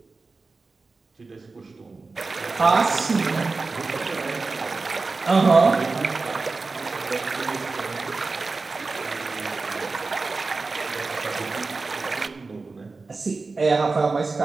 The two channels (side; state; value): left; quieter; 3.9 dB